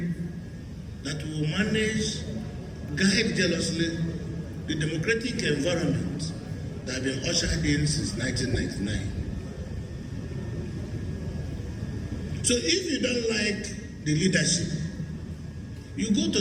that we will manage, guide jealously the democratic environment that has been ushered in since 1999. So if you don't like the leadership, you go to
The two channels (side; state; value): both; identical; correlation 1.00